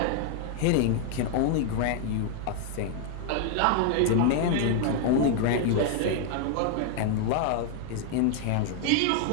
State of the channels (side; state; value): both; different; correlation 0.00